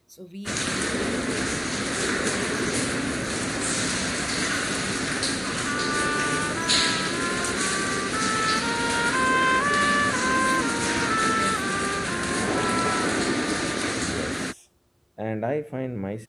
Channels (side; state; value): both; identical; correlation 1.00